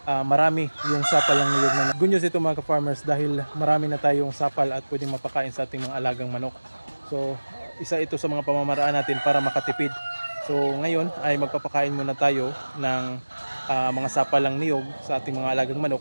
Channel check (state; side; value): inverted; both; correlation -1.00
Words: marami yung sapal ng niyog na good news ito mga ka-farmers dahil marami na tayong sapal at pwedeng mapakain sa ating mga alagang manok. So isa ito sa mga pamamaraan natin para makatipid. So ngayon ay magpapakain muna tayo ng mga sapal ng niyog sa ating mga alagang